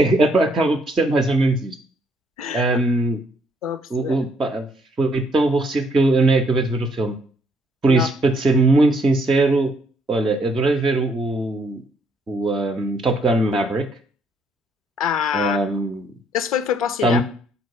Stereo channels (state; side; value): normal; both; correlation 0.69